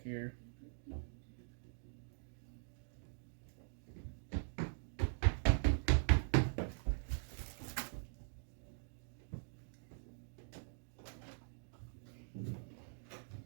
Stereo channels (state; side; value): silent; left; digital silence